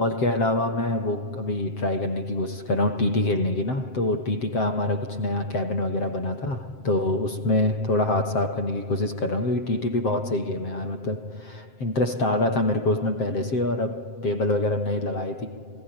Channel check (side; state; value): right; late; 7.6 ms